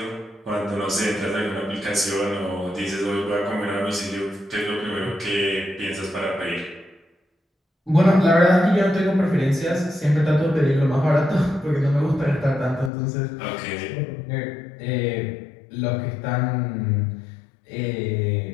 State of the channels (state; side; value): drops out; right; at 12.9 s